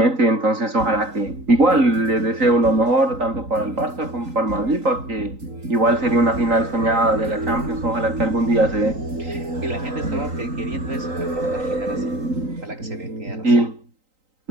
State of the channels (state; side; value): late; left; 3.9 ms